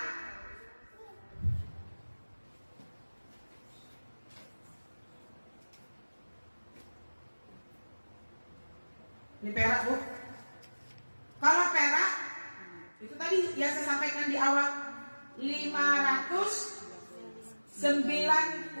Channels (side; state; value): both; inverted; correlation -1.00